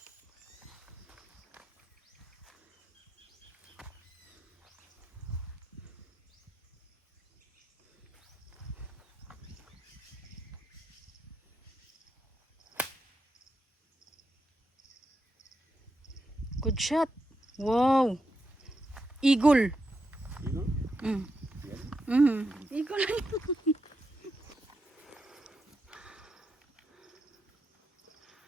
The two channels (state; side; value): normal; both; correlation 0.84